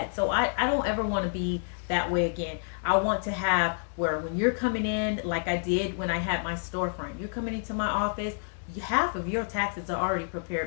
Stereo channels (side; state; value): right; silent; digital silence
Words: So I don't ever want to be that way again. I want to have where when you're coming in, like I did when I had my storefront, you're coming into my office, half of your taxes are already